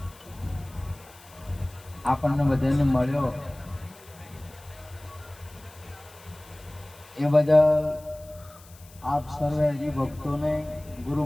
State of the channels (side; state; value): left; noise; hiss, 23 dB below the sound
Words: आपने बधाने मळ्यो ए बदल आप सर्वे हरि भक्तों ने गुरु